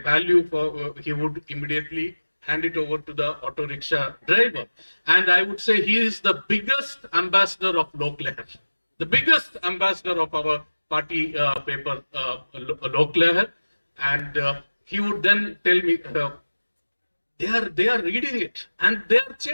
value for, he would immediately hand it over to the auto rickshaw driver. And I would say he is the biggest ambassador of Lok Lehar, the biggest ambassador of our party paper, Lok Lehar. And he would then tell me, they are reading it and they are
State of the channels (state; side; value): inverted; both; correlation -1.00